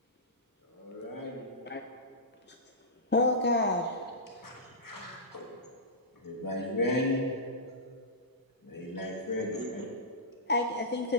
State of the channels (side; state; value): both; normal; correlation -0.18